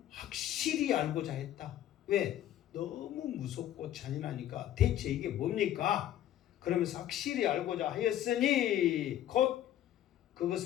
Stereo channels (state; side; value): quieter; right; 12.0 dB